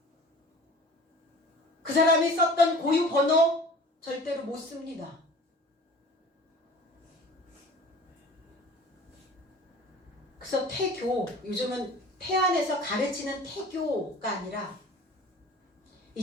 그 사람이 썼던 고유 번호 절대로 못 씁니다. 그래서 태교, 요즘은 태안에서 가르치는 태교가 아니라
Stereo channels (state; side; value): normal; both; correlation 0.44